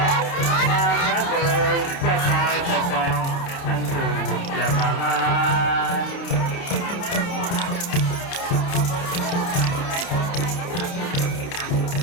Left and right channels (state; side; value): late; right; 29 ms